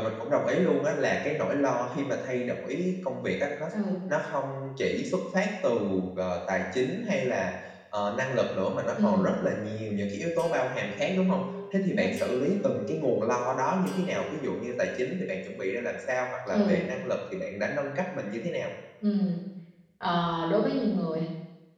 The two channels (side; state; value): both; identical; correlation 1.00